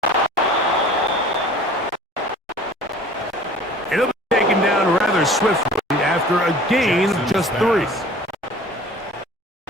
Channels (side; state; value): both; normal; correlation 0.46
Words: It'll be taken down rather swiftly after a gain of just 3.